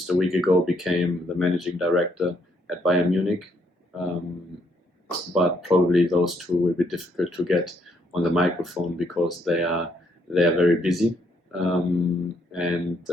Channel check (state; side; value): normal; both; correlation 0.72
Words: a week ago became the managing director at Bayern Munich. But probably those two will be difficult to get on the microphone because they are very busy.